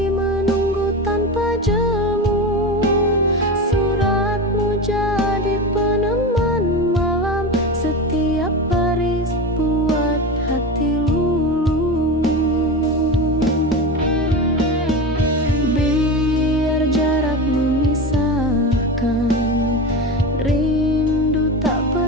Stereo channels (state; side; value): normal; both; correlation 0.24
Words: menunggu tanpa jemu, suratmu jadi peneman malam. Setiap baris buat hati luluh. Biar jarak memisahkan, rindu tak